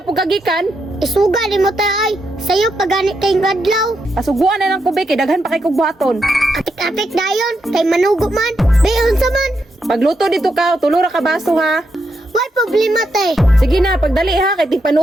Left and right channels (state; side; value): normal; both; correlation 0.82